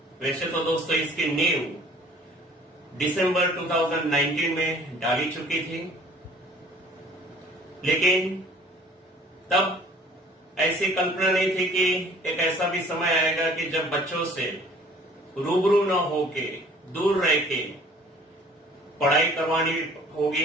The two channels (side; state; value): both; normal; correlation 0.52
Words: वैसे तो दोस्तों इसकी नींव दिसंबर 2019 में डाली चुकी थी, लेकिन तब ऐसी कल्पना नहीं थी कि एक ऐसा भी समय आएगा कि जब बच्चों से रूबरू न होके, दूर रह के पढ़ाई करवानी